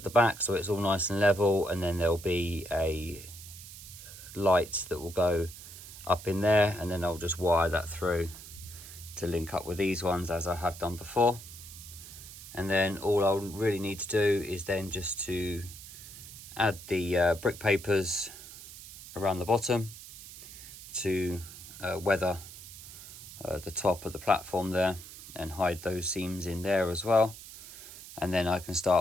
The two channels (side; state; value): right; noise; hiss, 15 dB below the sound